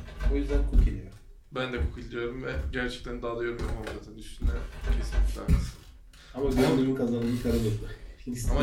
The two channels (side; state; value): both; identical; correlation 1.00